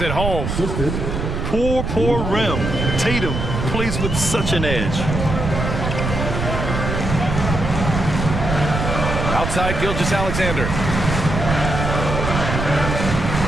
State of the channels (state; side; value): noise; right; rumble, 3 dB below the sound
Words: it home. Poor rim. Tatum plays with such an edge. Outside Gilgeous-Alexander.